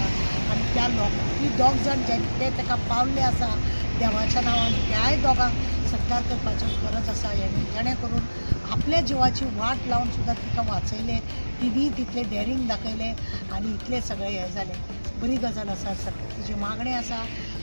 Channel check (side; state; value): both; inverted; correlation -1.00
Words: आनी त्या ती दोग जाण जे ताका पावल्ले आसा देवाच्या नांवान त्याय दोगांक सत्कार करपाचो गरज आसा जेणे करून आपल्या जिवाची वाट लावन सुद्दां तिका वाचयले तिणी तितले डेरींग दाखयले आनी इतले सगळे हे जाले बरी गजाल आसा सरकार तिची मागणी आसा